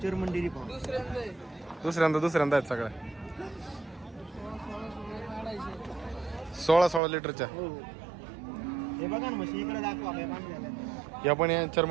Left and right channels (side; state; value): left; drops out; at 7.0 s